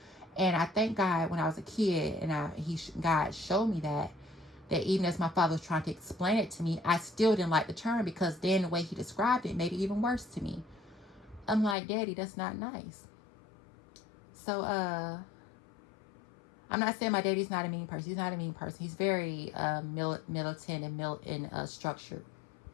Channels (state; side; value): drops out; right; at 11.8 s